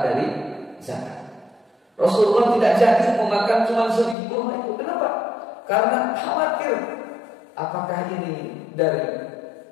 dari zakat. Rasulullah tidak jadi memakan cuma sebiji kurma itu. Kenapa? Karena khawatir apakah ini dari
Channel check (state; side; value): drops out; right; at 4.2 s